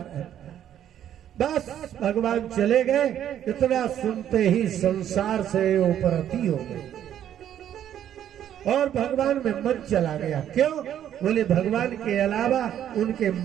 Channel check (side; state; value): left; quieter; 10.6 dB